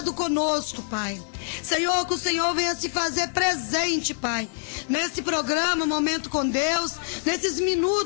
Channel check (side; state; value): right; silent; digital silence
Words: conosco, Pai. Senhor, que o Senhor venha se fazer presente, Pai, nesse programa Momento com Deus, nesses